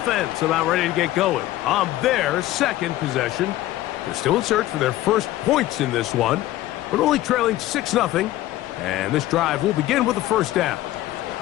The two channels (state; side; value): quieter; right; 15.4 dB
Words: about ready to get going on their second possession. They're still in search for their first points in this one, but only trailing 6-0. And this drive will begin with a first down.